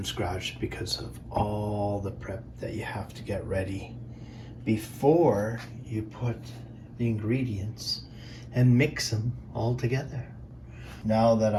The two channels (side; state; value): both; identical; correlation 1.00